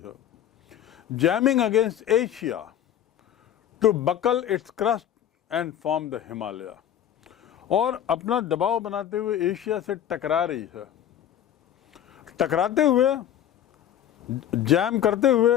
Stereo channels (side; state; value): right; quieter; 10.4 dB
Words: jamming against Asia to buckle its crust and form the Himalaya, और अपना दबाव बनाते हुए एशिया से टकरा रही है। टकराते हुए, जैम करते